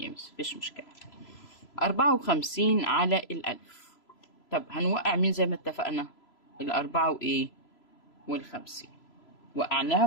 مس، مفيش مشكلة. 54 على الألف. طب هنوقع مين زي ما اتفقنا؟ الأربعة وإيه؟ والخمسين.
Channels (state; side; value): late; right; 3.0 ms